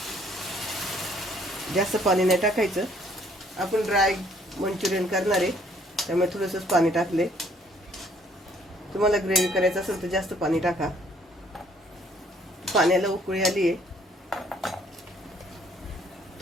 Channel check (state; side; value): normal; both; correlation 0.63